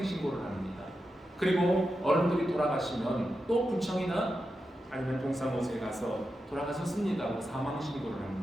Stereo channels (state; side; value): normal; both; correlation 0.89